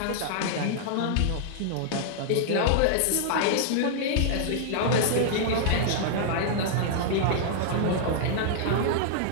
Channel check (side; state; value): both; different; correlation -0.01